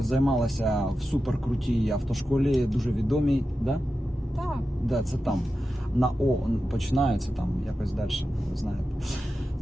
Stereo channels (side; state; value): both; normal; correlation 0.92